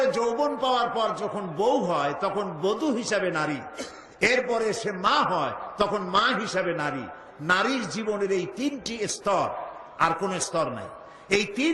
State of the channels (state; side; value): identical; both; correlation 1.00